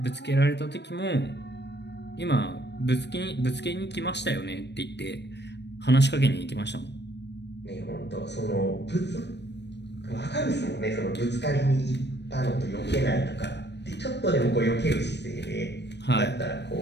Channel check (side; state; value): right; late; 0.50 ms